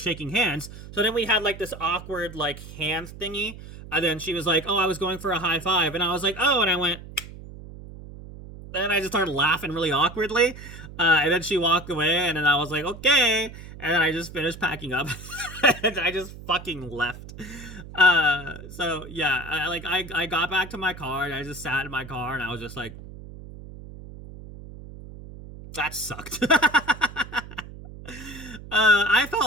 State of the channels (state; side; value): noise; right; hum, 14 dB below the sound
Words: hands. So then we had like this awkward like hand thingy, and then she was like, "Oh, I was going for a high five," and I was like, "Oh," and I went. And I just started laughing really awkwardly. And then she walked away, and then I was like, okay. And then I just finished packing up. And I just fucking left. So, yeah, I got back to my car, and I just sat in my car, and I was just like, that sucked. I